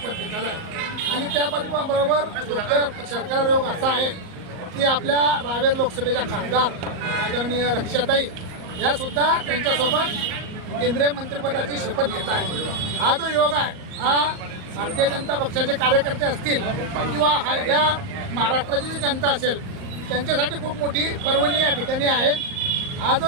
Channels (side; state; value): left; late; 38 ms